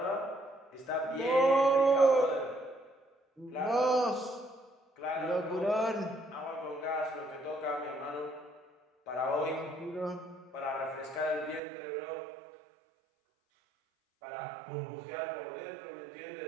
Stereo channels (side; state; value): left; drops out; at 11.6 s